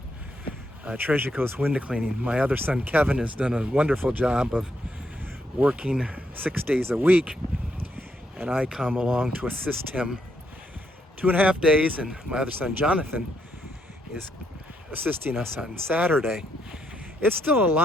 Treasure Coast Window Cleaning. My other son Kevin has done a wonderful job of working 6 days a week, and I come along to assist him 2.5 days, and my other son Jonathan is assisting us on Saturday. It's still a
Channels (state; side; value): normal; both; correlation 0.76